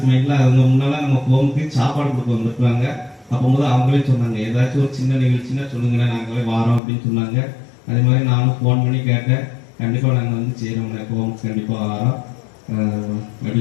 மைண்ட்ல அவங்க முன்னால நம்ம ஹோமுக்கு சாப்பாடு கொடுக்க வந்துருக்காங்க. அப்போது அவங்களே சொன்னாங்க, ஏதாச்சும் ஒரு சின்ன நிகழ்ச்சின்னா சொல்லுங்க, நாங்களே வாரோம் அப்படின்னு சொன்னாங்க. அதே மாதிரி நானும் ஃபோன் பண்ணி கேட்டேன், கண்டிப்பாக நாங்கள் வந்து செய்கிறோம், ஹோமுக்கு கண்டிப்பாக வாரோம்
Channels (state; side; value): drops out; right; at 6.8 s